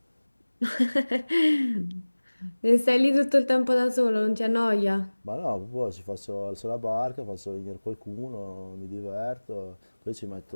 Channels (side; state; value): both; inverted; correlation -1.00